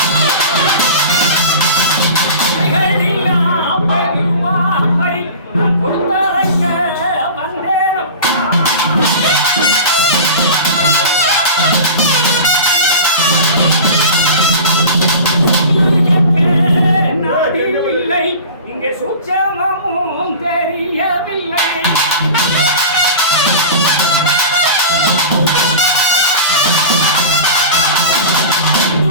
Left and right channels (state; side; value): inverted; both; correlation -0.34